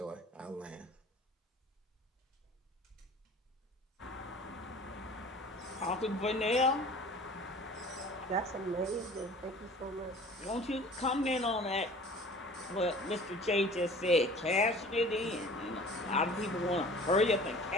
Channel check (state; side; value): normal; both; correlation 0.45